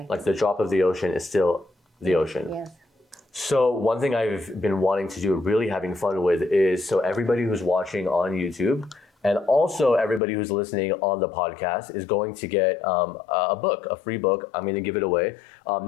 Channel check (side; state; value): right; drops out; at 10.2 s